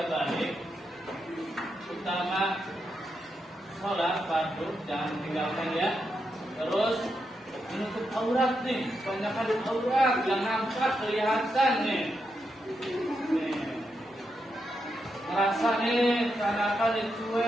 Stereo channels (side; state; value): both; normal; correlation 0.84